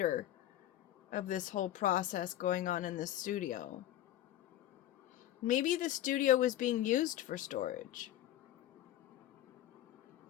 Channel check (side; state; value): right; quieter; 13.0 dB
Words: of this whole process going on in this studio. Maybe the studio was being used for storage.